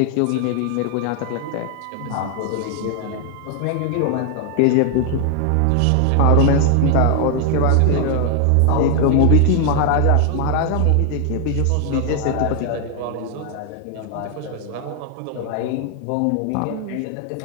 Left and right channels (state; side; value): different; both; correlation 0.00